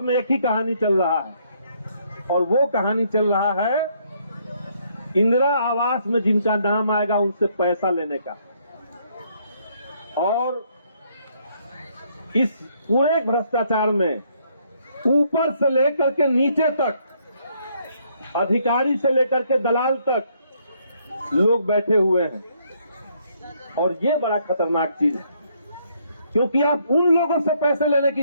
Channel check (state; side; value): inverted; both; correlation -0.69